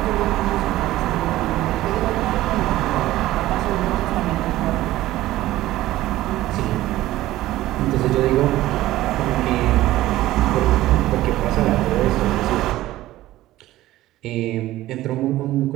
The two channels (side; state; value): left; quieter; 15.7 dB